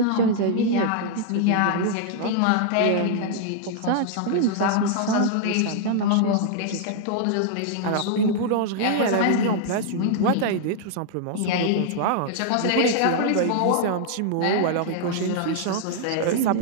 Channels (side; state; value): both; different; correlation -0.01